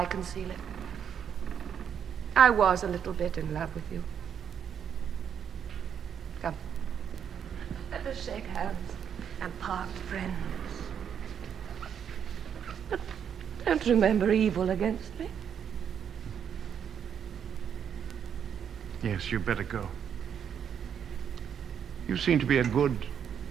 conceal it? I was a little bit in love with you. Come. Let us shake hands and part friends. But don't remember evil against me. Yes, you better go. You seem to be a good,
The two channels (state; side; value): quieter; left; 8.2 dB